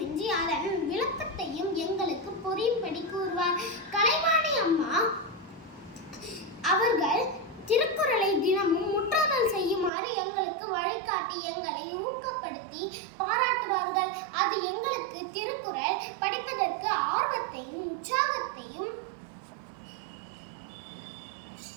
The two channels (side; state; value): left; drops out; at 9.9 s